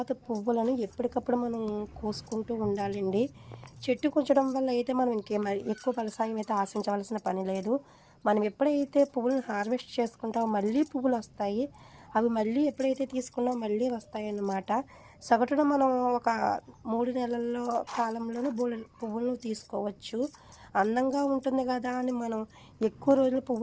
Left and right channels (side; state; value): both; identical; correlation 1.00